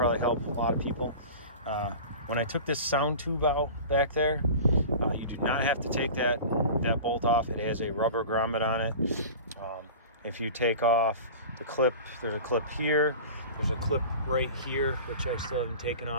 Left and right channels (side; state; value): both; inverted; correlation -0.36